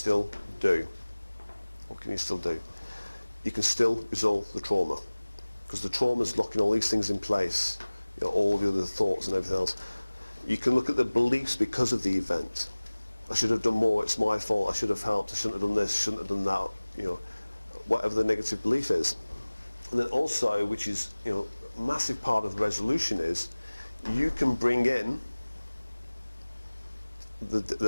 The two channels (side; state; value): both; inverted; correlation -1.00